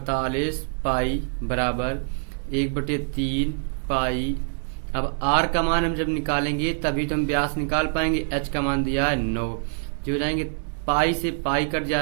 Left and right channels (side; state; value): left; silent; digital silence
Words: पाई बराबर 1/3 पाई। अब r का मान हम जब निकालेंगे तभी तो हम व्यास निकाल पाएंगे। h का मान दिया है 9, जो हो जाएंगे पाई से पाई कट